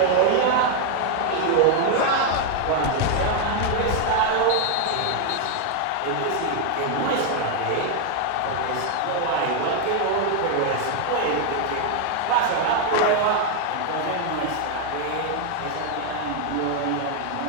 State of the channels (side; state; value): both; different; correlation 0.00